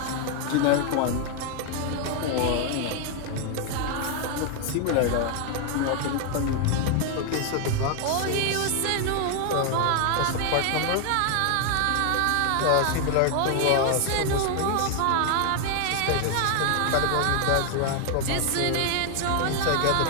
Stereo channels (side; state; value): both; different; correlation 0.00